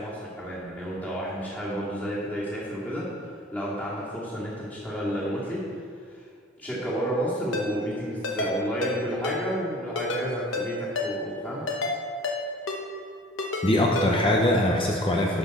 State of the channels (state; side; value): normal; both; correlation 0.46